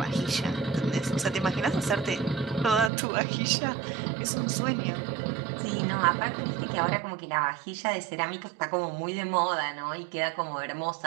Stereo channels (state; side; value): drops out; left; at 2.9 s